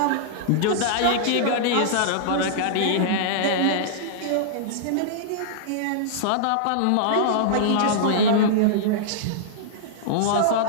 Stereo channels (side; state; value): both; different; correlation -0.02